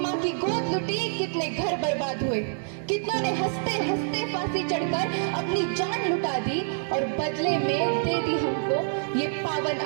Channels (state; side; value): silent; left; digital silence